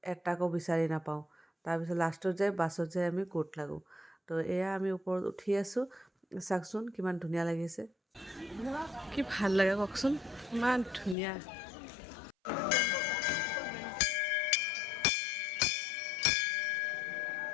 এটাকো বিচাৰি নাপাওঁ। তাৰপিছত লাষ্টত বাছত যাই আমি ক'ত লাগোঁ। তো এয়া আমি ওপৰত উঠি আছোঁ, চাওকচোন কিমান ধুনীয়া লাগিছে। কি ভাল লাগে কওকচোন, ইমান ধুনীয়া।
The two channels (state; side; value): drops out; right; at 11.2 s